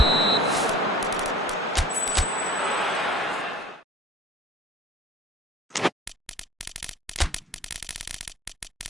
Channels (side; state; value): both; normal; correlation 0.48